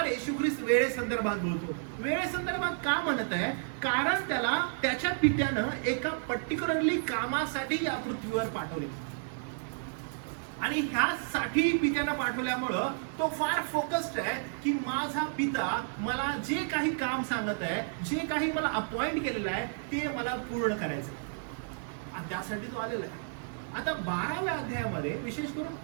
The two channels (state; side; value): silent; left; digital silence